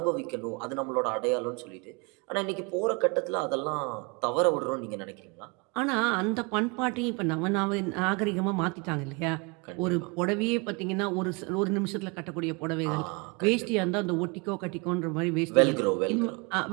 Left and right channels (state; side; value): quieter; left; 30.5 dB